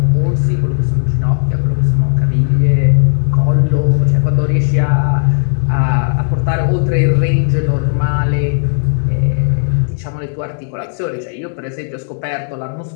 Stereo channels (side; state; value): right; silent; digital silence